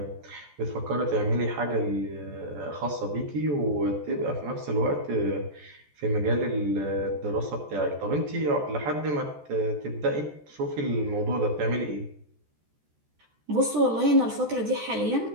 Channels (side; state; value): left; late; 14 ms